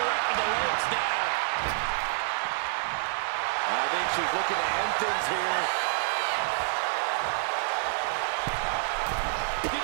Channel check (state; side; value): silent; left; 59 dB below the other